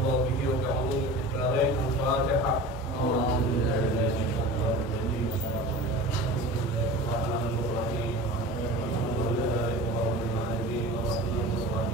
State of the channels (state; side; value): normal; both; correlation 0.35